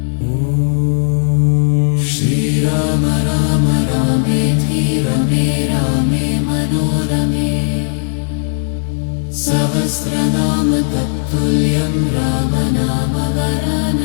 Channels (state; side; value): silent; right; digital silence